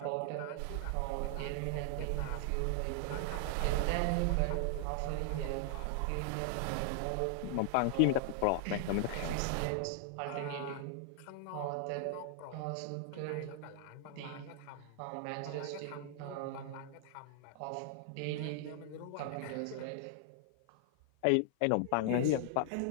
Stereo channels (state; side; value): different; both; correlation 0.00